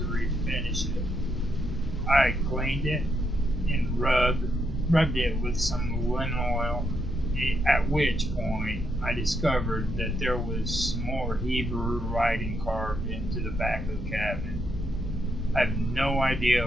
refinish it. I cleaned it and rubbed it with some linseed oil, at which point I discovered that there was some more Hebrew writing carved into the back of the cabinet. I have no idea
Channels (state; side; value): normal; both; correlation 0.79